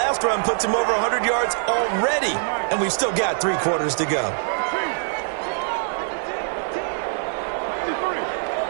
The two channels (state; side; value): silent; left; digital silence